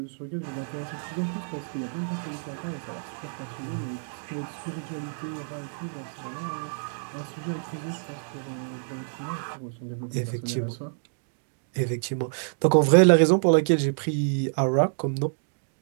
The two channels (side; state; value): left; silent; digital silence